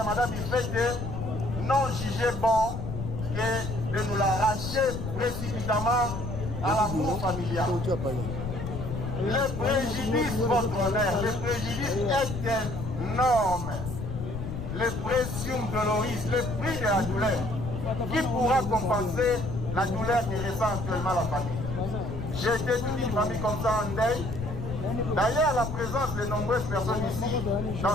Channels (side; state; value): left; noise; rumble, 6 dB below the sound